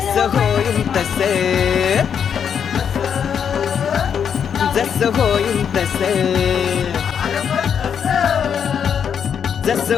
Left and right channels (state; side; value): quieter; right; 7.7 dB